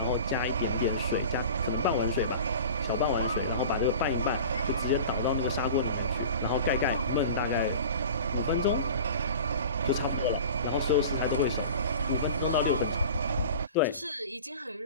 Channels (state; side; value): inverted; both; correlation -0.38